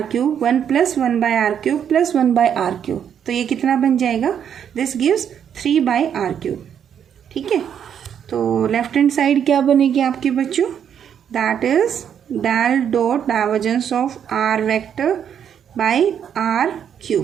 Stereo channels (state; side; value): quieter; left; 8.6 dB